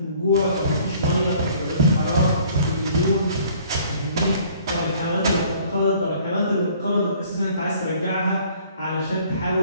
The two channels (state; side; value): inverted; both; correlation -0.56